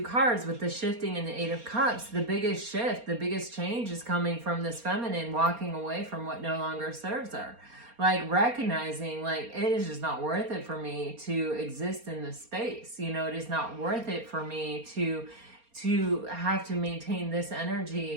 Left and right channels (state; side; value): late; left; 4.3 ms